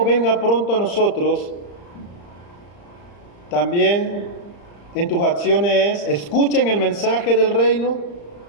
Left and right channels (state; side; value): late; right; 35 ms